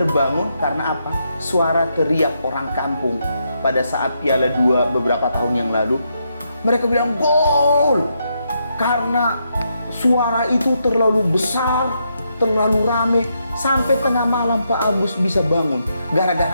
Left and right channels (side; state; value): both; inverted; correlation -0.80